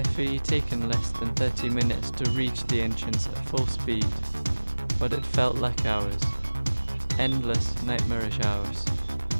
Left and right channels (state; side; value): inverted; both; correlation -1.00